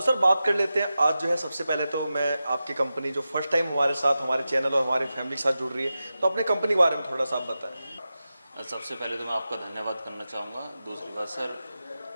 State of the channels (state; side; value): inverted; both; correlation -0.92